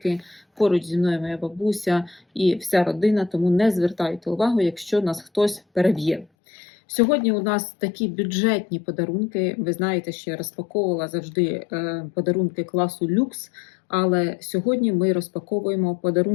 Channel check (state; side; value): drops out; right; at 6.2 s